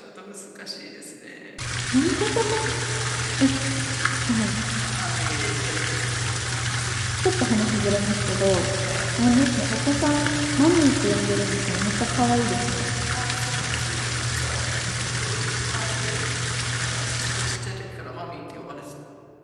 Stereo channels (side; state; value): both; identical; correlation 1.00